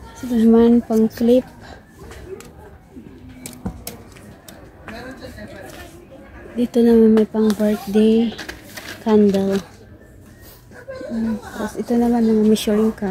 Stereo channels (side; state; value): both; identical; correlation 1.00